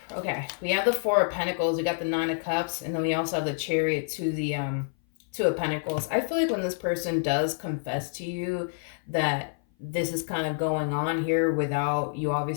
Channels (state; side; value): silent; right; 57 dB below the other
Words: Okay, we have the Four of Pentacles, we got the Nine of Cups, and then we also have the Chariot to the Two of Pentacles. I feel like when this person does confess to you that this is kind of going on here without you